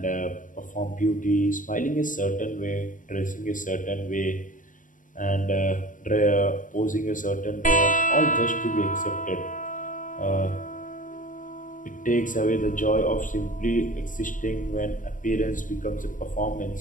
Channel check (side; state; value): right; late; 0.38 ms